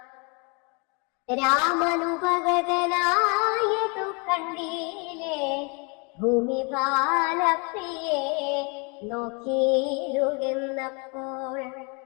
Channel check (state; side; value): quieter; right; 33.0 dB